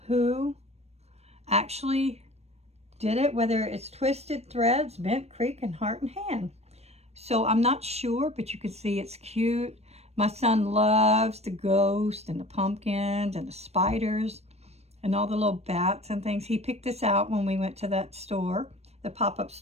who actually did it, whether it's Twisted Threads, Bent Creek, and Heart and Hand. So I'm not sure, but you can see it's cute. My son loves the ghosts and the pumpkins and the spiders and all the little bats and things. He picked this out when we went to that store, the pop-up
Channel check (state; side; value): late; left; 0.31 ms